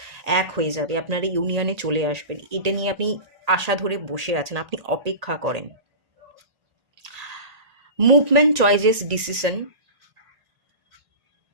এক হয়ে যাবে, আপনারা ইউনিয়নে চলে আসবেন। এটা নিয়ে আপনি আশা ধরে বসে আছেন, আপনি অপেক্ষা করেন। Movement, choices, decision.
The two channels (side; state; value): left; late; 1.9 ms